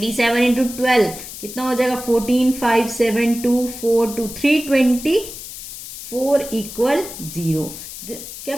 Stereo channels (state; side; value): noise; left; hiss, 11 dB below the sound